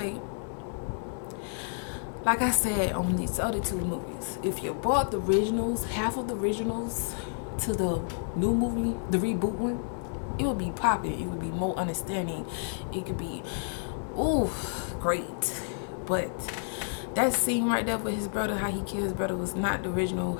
Like I said on these other two movies, if you bought the originals, half of the originals, to the new movie, the reboot one, it would be popping. It would be more understanding. It could be, ooh, great. But that scene right there with his brother, how he killed his brother, was not the original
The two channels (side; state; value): right; silent; digital silence